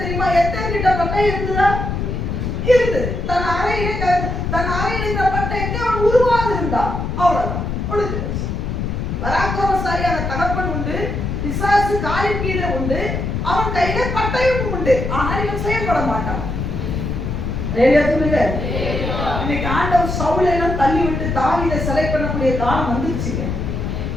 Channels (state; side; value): noise; left; rumble, 3 dB below the sound